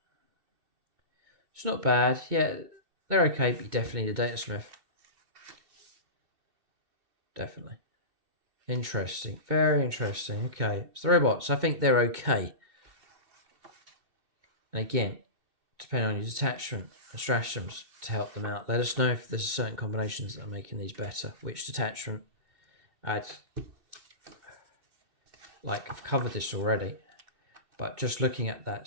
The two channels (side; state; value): left; late; 2.1 ms